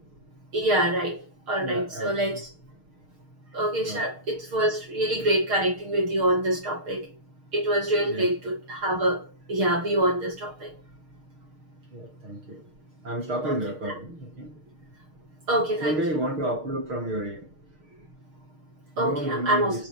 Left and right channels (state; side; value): late; left; 6.5 ms